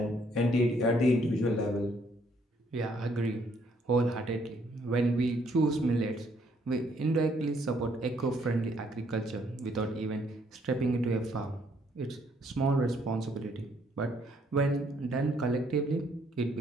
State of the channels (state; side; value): normal; both; correlation 0.68